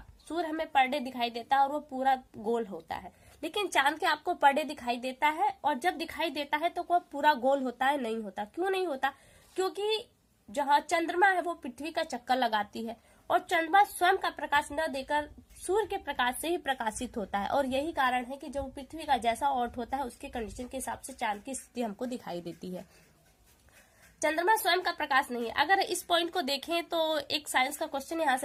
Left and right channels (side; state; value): both; identical; correlation 1.00